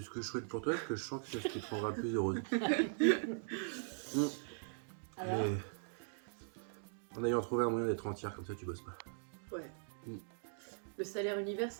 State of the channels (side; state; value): left; silent; digital silence